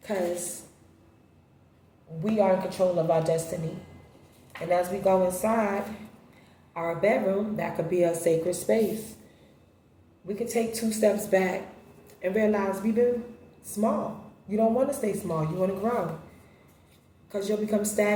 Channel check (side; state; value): both; identical; correlation 1.00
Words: Because we are in control of our destiny. And as we go inside our bedroom, that could be a sacred space. We could take 2 steps back and realize we've been small. You don't want to stay small. You want to grow. Because you'll become